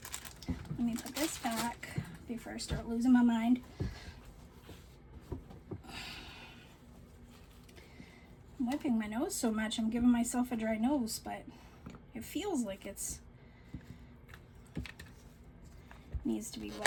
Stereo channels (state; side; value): identical; both; correlation 1.00